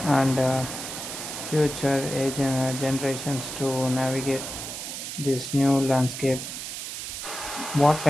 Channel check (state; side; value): noise; right; hiss, 7 dB below the sound